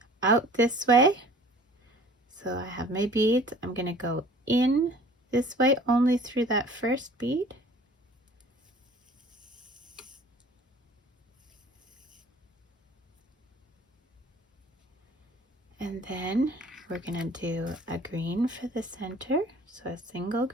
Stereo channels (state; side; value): normal; both; correlation 0.48